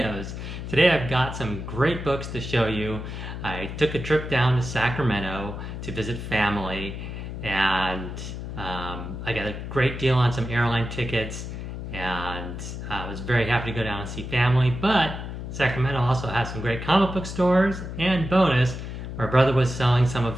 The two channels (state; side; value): noise; left; hum, 7 dB below the sound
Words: Today I've got some great books to show you. I took a trip down to Sacramento to visit family, and I got a great deal on some airline tickets, and I was very happy to go down and see family, but Sacramento also has some great comic book stores, and bonus, my brother was selling some of